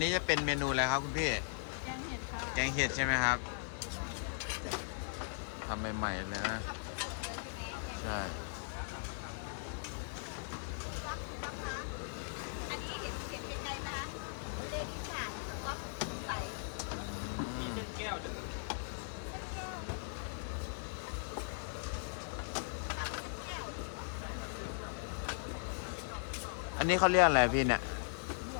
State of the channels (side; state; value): right; silent; digital silence